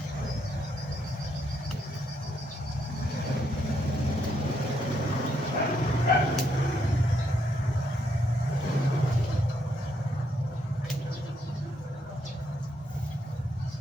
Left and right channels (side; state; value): both; normal; correlation 0.76